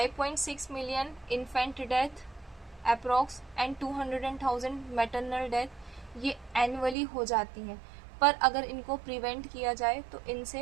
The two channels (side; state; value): left; drops out; at 7.0 s